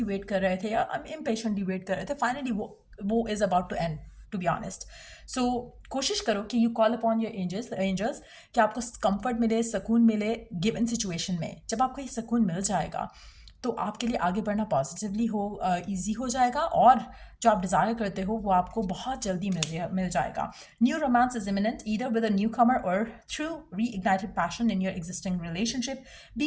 वेट कर रहे थे या इम्पेशेंटली वेट कर रहे थे। फाइनली वो is about to end, to be honest. So कोशिश करो कि you call upon your angels कि आपको कंफर्ट मिले, सुकून मिले गिवन सिचुएशन में। जब आपको ये सुकून मिल जाएगा तो आपके लिए आगे बढ़ना पॉजिटिवली ईजी हो जाएगा और जो आप डिज़ायर करते हो वो आपको बहुत जल्दी मिल जाएगा। New romance is imminent either with a newcomer or through reignited passion in your existing relationship.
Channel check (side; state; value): both; identical; correlation 1.00